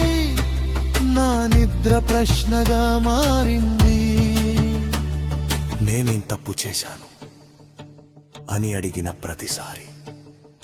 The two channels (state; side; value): identical; both; correlation 1.00